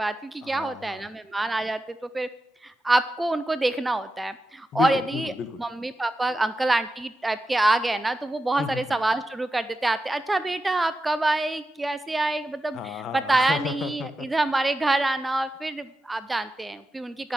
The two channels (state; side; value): normal; both; correlation 0.90